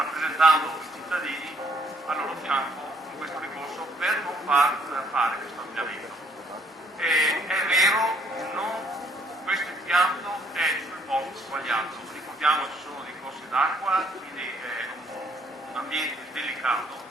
i cittadini al loro fianco in questo ricorso per non fare questo ampliamento. È vero, questo impianto è sul posto sbagliato, ricordiamo ci sono dei corsi d'acqua, quindi è un ambiente delicato,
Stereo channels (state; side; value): normal; both; correlation 0.65